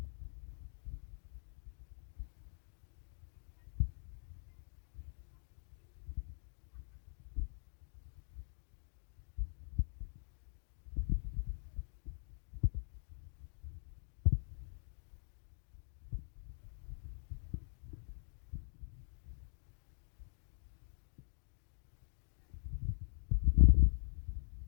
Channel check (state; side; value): silent; right; digital silence